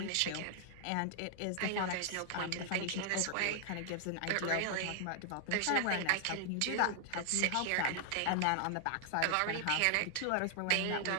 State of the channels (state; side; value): different; both; correlation 0.00